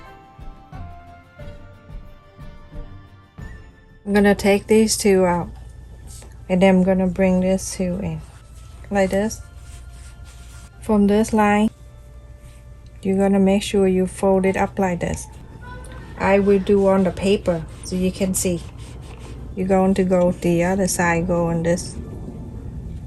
I'm gonna take these two out, and then I'm gonna bring this two in like this. From this line, you're gonna make sure you fold it up like this. I will do on the paper so you can see. You're going to go the other side, going this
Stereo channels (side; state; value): both; identical; correlation 1.00